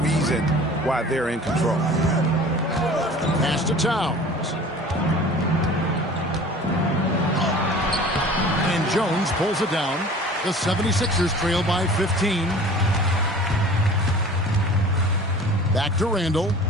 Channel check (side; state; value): both; normal; correlation 0.44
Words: reason why they're in control. Pass to Towns. And Jones pulls it down. The 76ers trail by 15. Back to Randall.